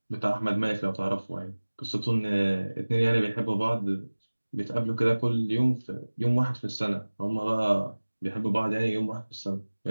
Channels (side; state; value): both; inverted; correlation -1.00